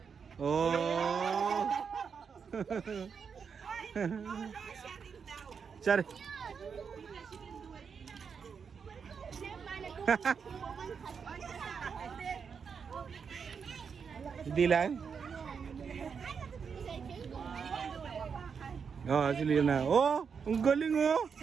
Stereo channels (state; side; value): quieter; left; 6.2 dB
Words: Oh. Sorry. Hindi lang. Oh, si Lina. Oh, ang galing oh.